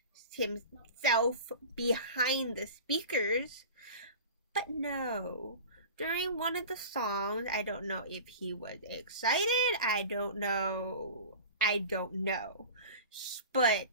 himself behind the speakers. But no. During one of the songs, I don't know if he was excited. I don't know. But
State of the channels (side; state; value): both; inverted; correlation -0.36